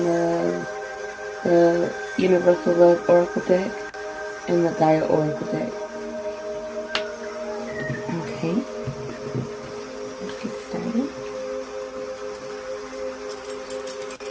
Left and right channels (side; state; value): both; identical; correlation 1.00